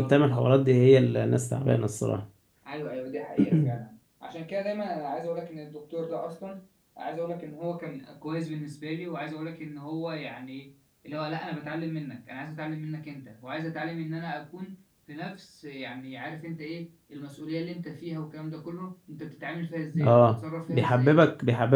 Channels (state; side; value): identical; both; correlation 1.00